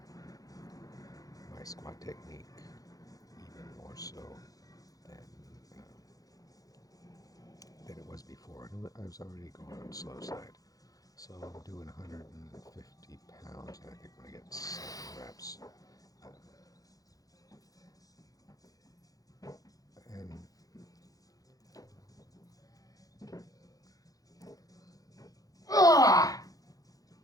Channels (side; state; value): right; late; 0.17 ms